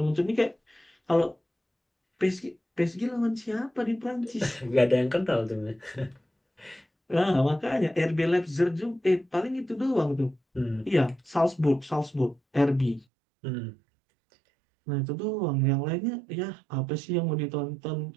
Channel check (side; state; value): left; drops out; at 13.1 s